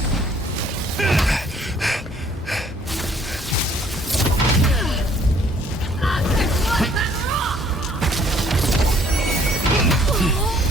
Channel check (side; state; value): both; normal; correlation 0.61